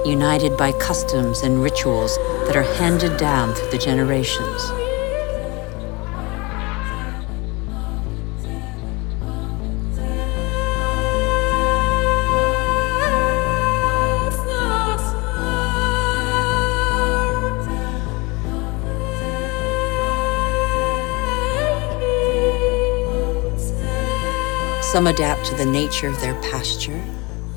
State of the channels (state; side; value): quieter; right; 25.6 dB